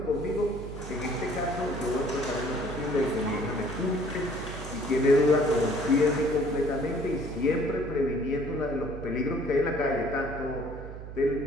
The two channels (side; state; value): right; noise; hum, 10 dB below the sound